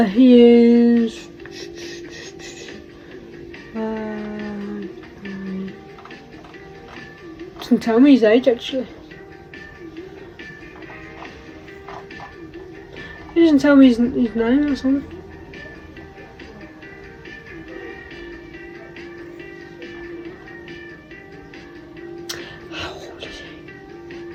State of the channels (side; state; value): both; identical; correlation 1.00